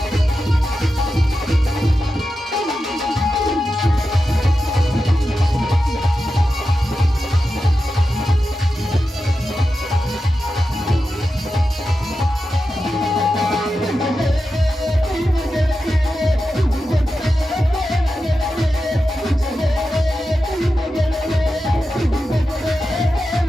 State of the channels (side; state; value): both; normal; correlation 0.91